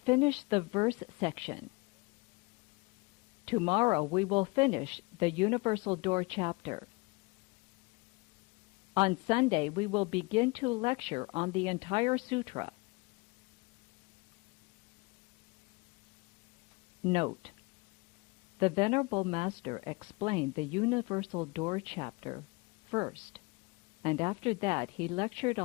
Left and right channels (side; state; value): right; quieter; 26.3 dB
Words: the verse section. Tomorrow, we will finish the Universal Door chapter. On Sunday, we will begin to lecture on the entire sutra. Note: the Venerable Master explained the Universal Door chapter first, and after that he lectured